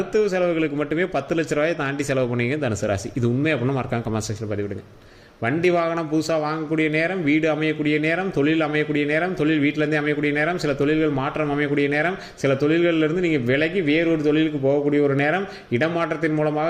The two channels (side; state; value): both; identical; correlation 1.00